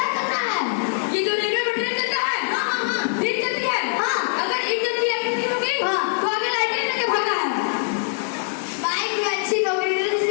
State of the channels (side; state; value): right; silent; 64 dB below the other